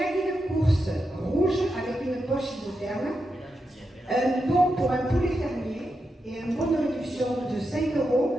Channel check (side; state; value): both; normal; correlation 0.87